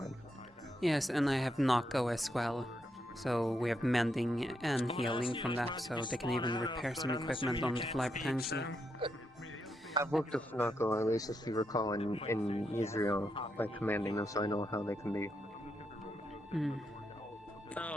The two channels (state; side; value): normal; both; correlation 0.81